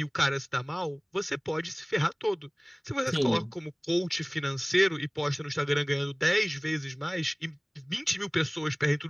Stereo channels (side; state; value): both; identical; correlation 1.00